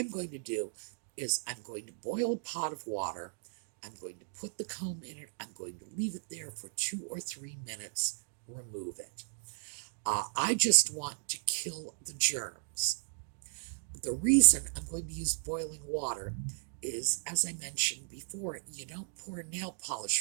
going to do is I'm going to boil a pot of water I'm going to put the comb in it. I'm going to leave it there for 2 or 3 minutes, remove it. I just want to kill the germs. The reason I'm going to use boiling water is, as I mentioned before, you don't pour nail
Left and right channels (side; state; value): left; silent; digital silence